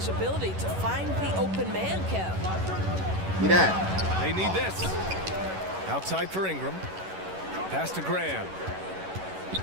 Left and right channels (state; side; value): late; left; 11 ms